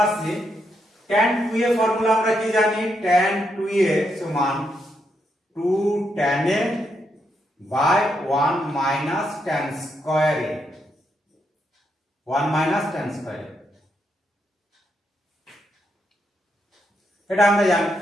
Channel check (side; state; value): both; normal; correlation 0.80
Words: আসছি tan 2a ফর্মুলা। আমরা কি জানি, tan 2a সমান 2 tan a by 1 minus tan square a, 1 minus tan square a, এটা আমরা জানি।